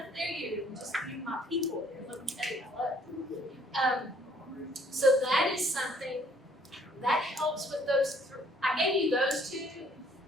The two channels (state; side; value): normal; both; correlation 0.61